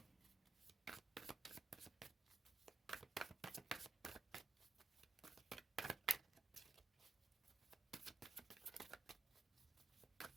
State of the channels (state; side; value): quieter; left; 4.3 dB